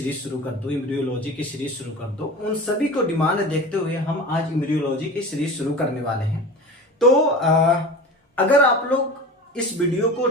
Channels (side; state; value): both; normal; correlation 0.33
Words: शुरू कर दो, एम्ब्रियोलॉजी की सीरीज शुरू कर दो। उन सभी को डिमांड देखते हुए हम आज एम्ब्रियोलॉजी की सीरीज शुरू करने वाले हैं। तो अगर आप लोग इस वीडियो को